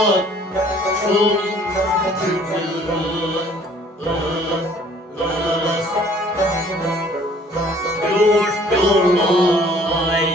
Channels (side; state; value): both; normal; correlation 0.56